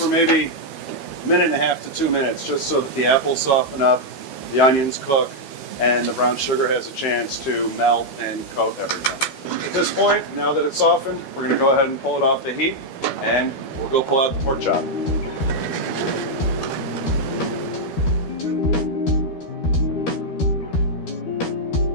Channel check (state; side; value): late; right; 12 ms